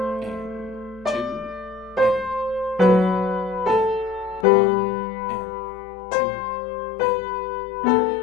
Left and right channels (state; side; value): drops out; right; at 4.5 s